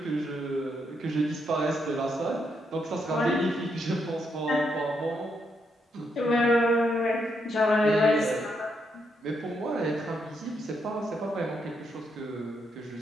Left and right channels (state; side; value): normal; both; correlation 0.78